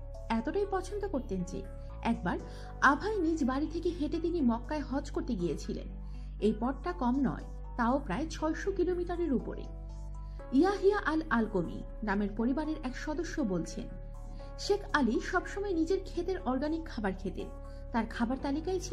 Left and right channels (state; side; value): identical; both; correlation 1.00